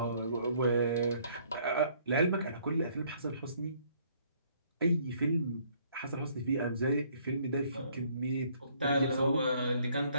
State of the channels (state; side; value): inverted; both; correlation -0.63